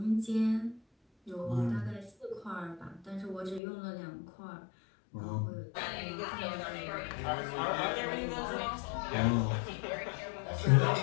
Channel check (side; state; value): right; drops out; at 3.6 s